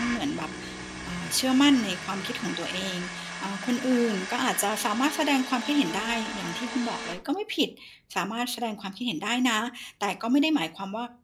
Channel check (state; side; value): identical; both; correlation 1.00